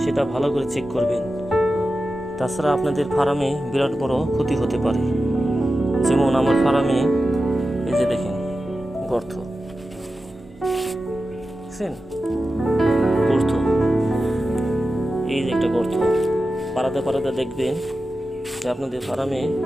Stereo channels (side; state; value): both; normal; correlation 0.92